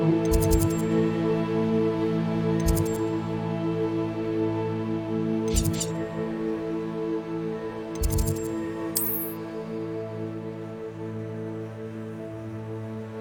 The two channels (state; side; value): identical; both; correlation 1.00